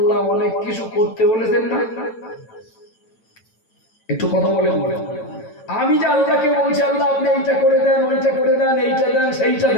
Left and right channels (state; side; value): late; right; 9.0 ms